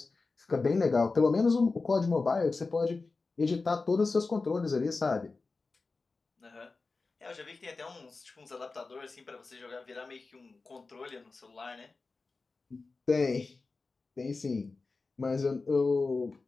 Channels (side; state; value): right; quieter; 3.9 dB